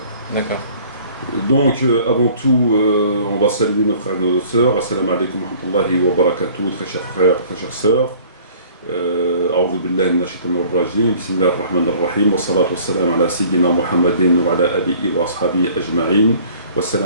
D'accord. Donc, avant tout, on va saluer nos frères et nos sœurs. Assalamu alaikum wa rahmatullahi wa barakatuh, très chers frères, très chères sœurs. أعوذ بالله من الشيطان الرجيم بسم الله الرحمن الرحيم والصلاة والسلام على سيدنا محمد وعلى آله وأصحابه أجمعين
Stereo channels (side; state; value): both; inverted; correlation -0.52